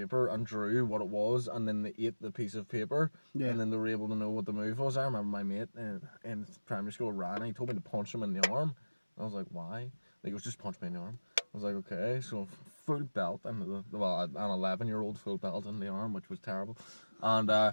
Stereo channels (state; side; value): inverted; both; correlation -1.00